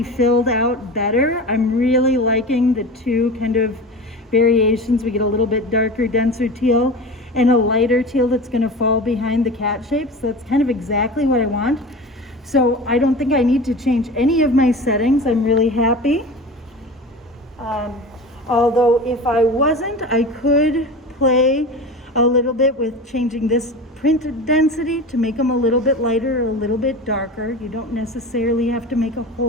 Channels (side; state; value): both; normal; correlation 0.32